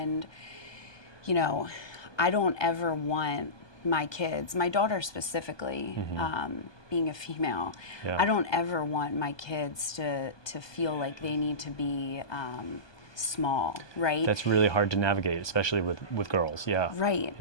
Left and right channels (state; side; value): late; right; 1.2 ms